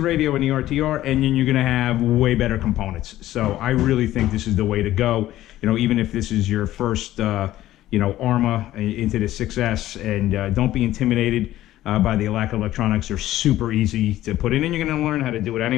radio in the RTR, and then you're gonna have way better components. So I really think this is the way to go. You know, even if this is your first, you know, Arrma into the 6S, and don't be intimidated. by the Alac Electronics. They're super easy to put in, and you're going to learn how to do it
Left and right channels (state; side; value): quieter; right; 14.4 dB